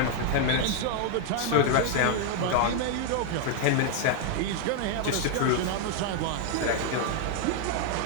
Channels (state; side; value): different; both; correlation 0.00